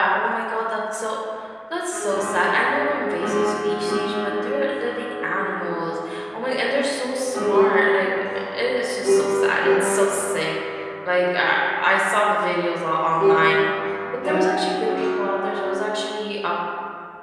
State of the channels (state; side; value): identical; both; correlation 1.00